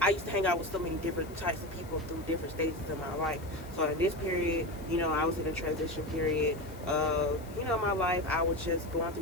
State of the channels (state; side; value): noise; left; hiss, 22 dB below the sound